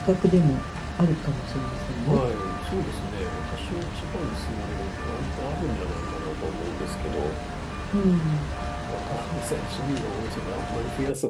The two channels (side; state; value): both; identical; correlation 1.00